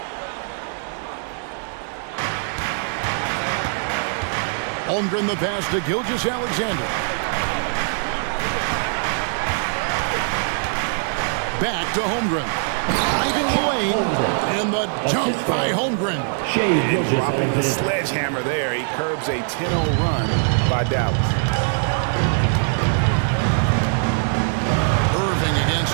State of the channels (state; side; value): silent; left; 64 dB below the other